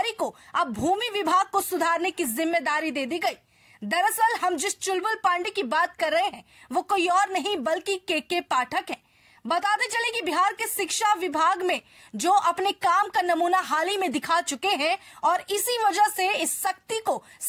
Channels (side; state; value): both; identical; correlation 1.00